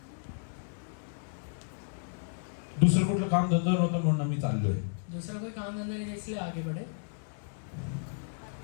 दुसरं कुठलं काम धंदा नव्हतं म्हणून आम्ही चाललोय. दूसरा कोई काम धंधा नहीं, इसलिए आगे बढ़े.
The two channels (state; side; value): silent; right; digital silence